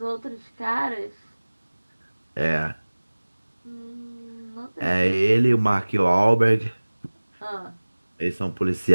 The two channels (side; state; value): both; inverted; correlation -1.00